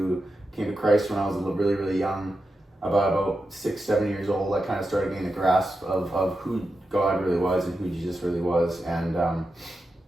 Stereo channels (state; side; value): normal; both; correlation 0.89